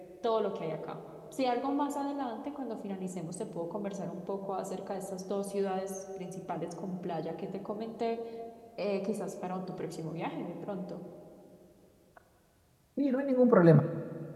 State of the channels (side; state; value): both; identical; correlation 1.00